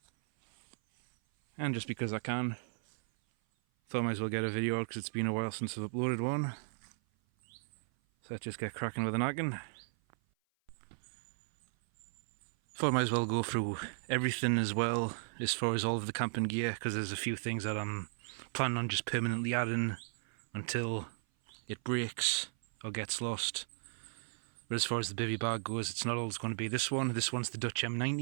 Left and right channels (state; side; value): silent; left; 54 dB below the other